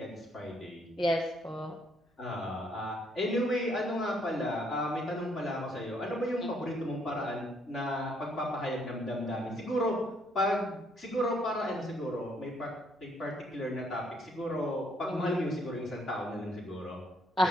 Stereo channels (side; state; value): both; normal; correlation 0.69